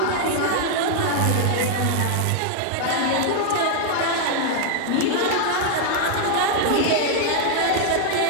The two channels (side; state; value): both; different; correlation 0.00